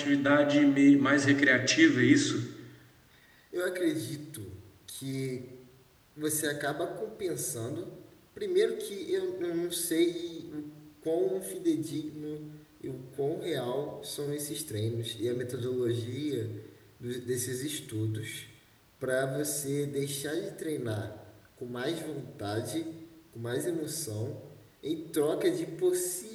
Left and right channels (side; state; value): both; identical; correlation 1.00